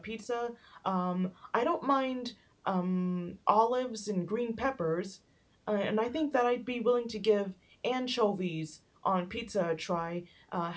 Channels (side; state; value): both; identical; correlation 1.00